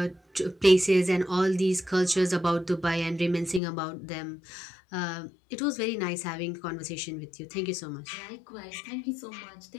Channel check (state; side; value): drops out; right; at 3.6 s